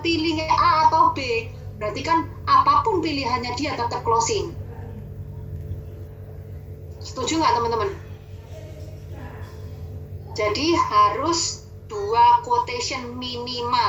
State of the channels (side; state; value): both; identical; correlation 1.00